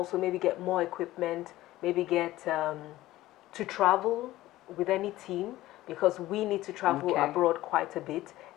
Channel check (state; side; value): quieter; right; 16.2 dB